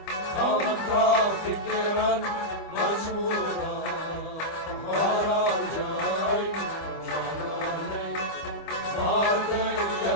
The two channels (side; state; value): right; late; 25 ms